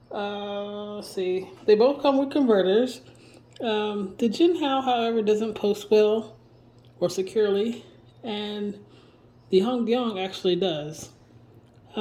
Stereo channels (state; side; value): identical; both; correlation 1.00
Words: Let's see. They both come with converters. The Jinhao, however, doesn't post well or securely, and the Hondian actually does.